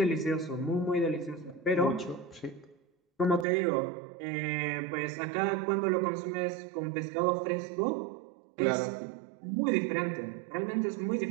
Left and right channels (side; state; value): left; drops out; at 3.5 s